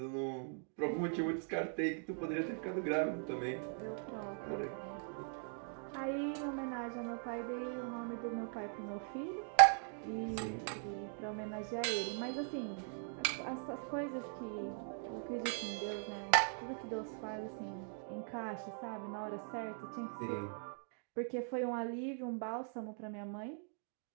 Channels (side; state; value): left; silent; 51 dB below the other